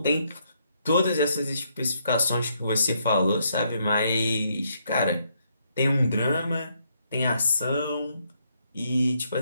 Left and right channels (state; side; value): inverted; both; correlation -0.74